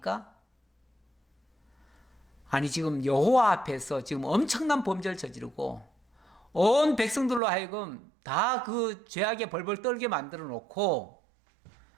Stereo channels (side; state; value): left; drops out; at 7.4 s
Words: 아니 지금 여호와 앞에서 지금 엄청난 범죄를 저지르고 온 백성들로 하여금 다 그 죄악에 벌벌 떨게 만들어 놓고